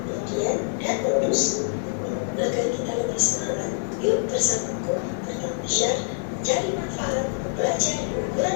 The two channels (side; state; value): right; silent; 58 dB below the other